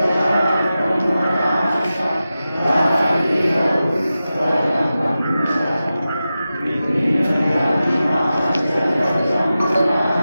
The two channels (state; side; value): inverted; both; correlation -0.93